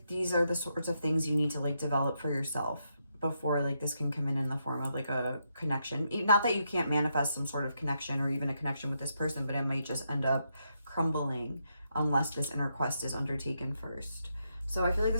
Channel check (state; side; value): inverted; both; correlation -0.80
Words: these are the sorts of things you need to like develop for yourself before like this can come in the form of like a connection. Not that you can't manifest some sort of connection or even a connection with this person, but it might just end up crumbling unless this inner quest is undertaken first. So I feel like